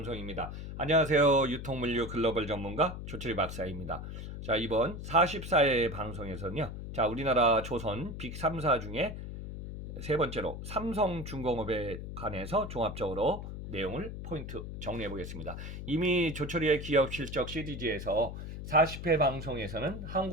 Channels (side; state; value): left; noise; hum, 8 dB below the sound